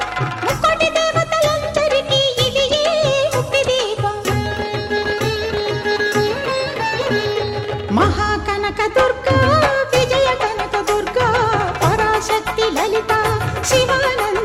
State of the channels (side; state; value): both; identical; correlation 1.00